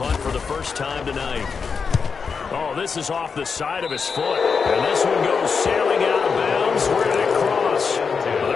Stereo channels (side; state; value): right; quieter; 5.6 dB